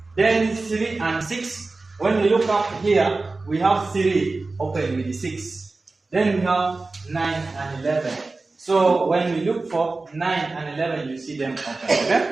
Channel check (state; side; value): quieter; left; 3.5 dB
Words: Then 3 and 6. When we look up here, we have 3 open with the 6. Then we have 9 and 11. So when we look for 9 and 11, you see them open.